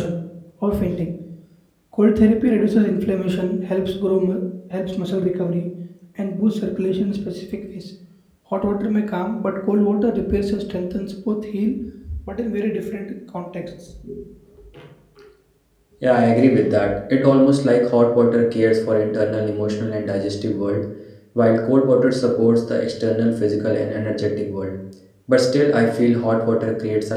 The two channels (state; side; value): identical; both; correlation 1.00